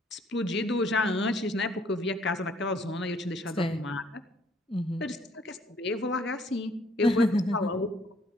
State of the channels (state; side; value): normal; both; correlation 0.63